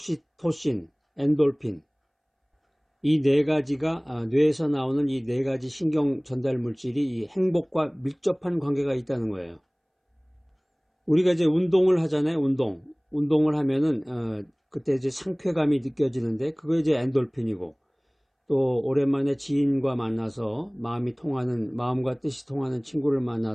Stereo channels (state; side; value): identical; both; correlation 1.00